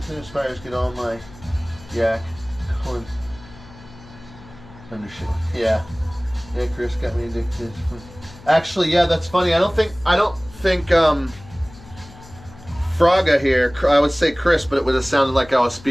and aspires get all my yak corn undershell. Yeah. Yeah, Chris got me addicted. Actually, yeah, that's funny. I don't think Fraga here, I would say Chris, but it would have sounded like I was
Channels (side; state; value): left; noise; hum, 20 dB below the sound